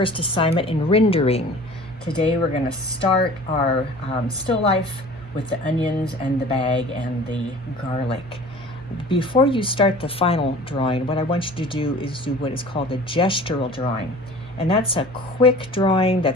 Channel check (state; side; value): normal; both; correlation 0.44